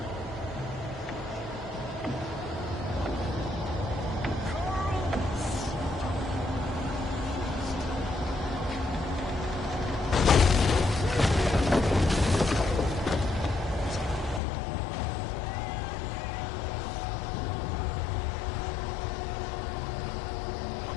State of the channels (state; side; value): drops out; right; at 14.4 s